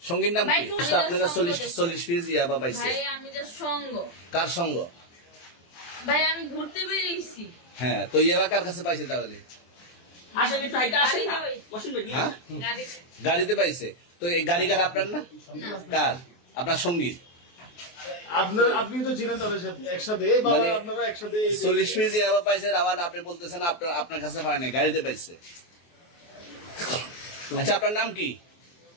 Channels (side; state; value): right; late; 24 ms